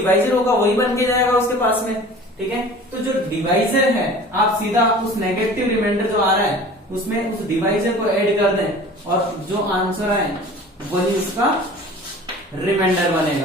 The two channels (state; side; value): normal; both; correlation 0.43